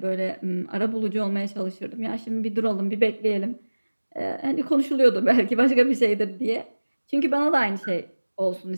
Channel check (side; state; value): both; inverted; correlation -1.00